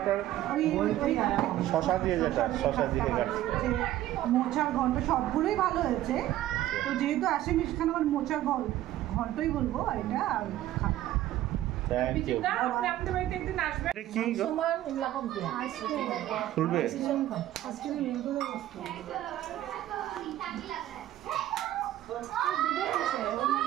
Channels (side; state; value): left; quieter; 13.8 dB